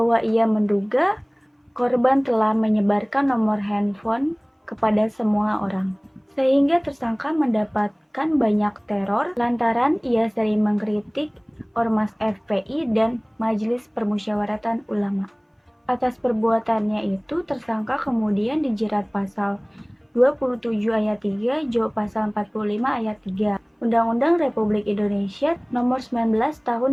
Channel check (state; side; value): identical; both; correlation 1.00